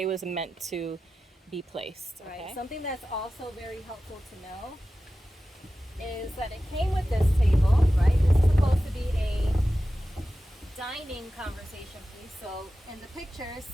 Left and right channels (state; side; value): normal; both; correlation 0.94